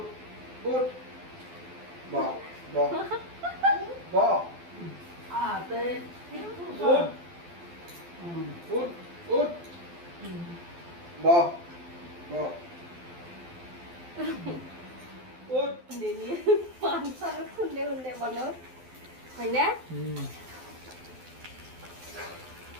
খুন্দে মনত হয়নে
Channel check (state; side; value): late; left; 12 ms